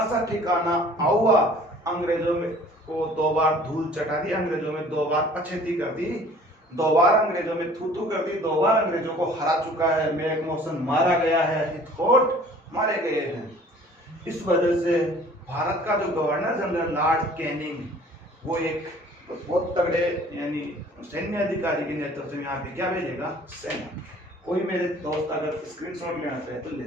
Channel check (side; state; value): both; normal; correlation 0.51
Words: सा ठिकाना आउवा अंग्रेजों में को 2 बार धूल चटा दी, अंग्रेजों में 2 बार पछेती कर दी, 2 बार अंग्रेजों में थूथू कर दी, 2 बार अंग्रेजों को हरा चुका है। मैकमोहन मारा गया है, हितकोट मारे गए हैं। इस वजह से भारत का जो गवर्नर जनरल लॉर्ड कैनिंग, वो एक बहुत तगड़े यानी सैन्य अधिकारी के नेतृत्व में यहाँ पे क्या भेजेगा? सेना। कोई मेरे दोस्त अगर स्क्रीनशॉट लेना चाहे तो ले